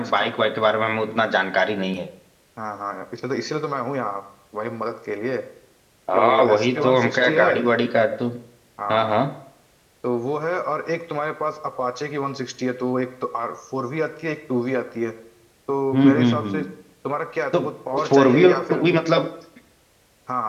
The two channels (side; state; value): both; identical; correlation 1.00